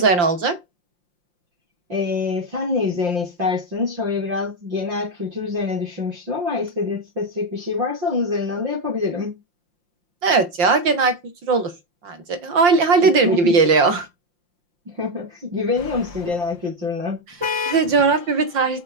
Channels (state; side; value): late; left; 5.7 ms